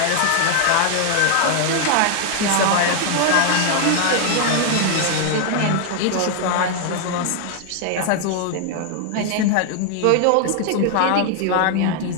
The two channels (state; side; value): different; both; correlation 0.00